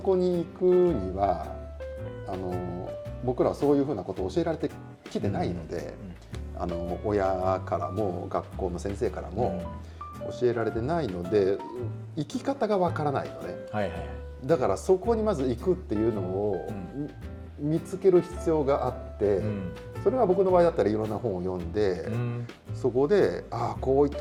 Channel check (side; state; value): both; identical; correlation 1.00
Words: に行くには僕らはそういうふうなことを教えられてきてないので、親からも学校の先生からも教えられてないので生き方がわからないのね。だからそこにまず行くっていうのを見つける必要があって、それは僕の場合だったらいろんな本を読んで、そこでこういっ